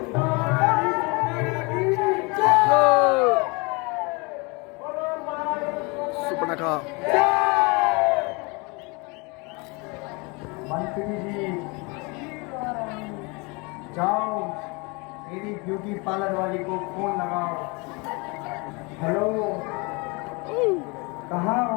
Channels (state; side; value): quieter; right; 28.8 dB